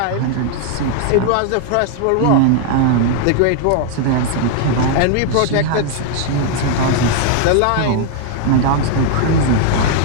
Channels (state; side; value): different; both; correlation 0.00